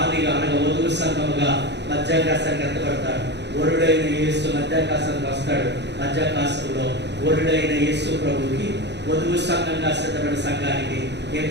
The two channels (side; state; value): left; late; 0.50 ms